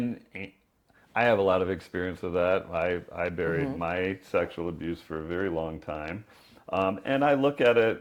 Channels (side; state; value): both; identical; correlation 1.00